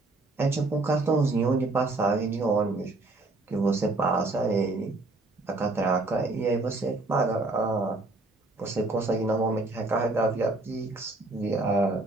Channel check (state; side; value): quieter; left; 3.1 dB